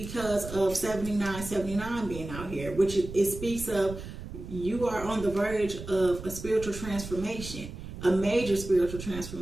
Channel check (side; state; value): right; noise; rumble, 10 dB below the sound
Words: of 7979 being out here, which it speaks of you are on the verge of a spiritual transformation, a major spiritual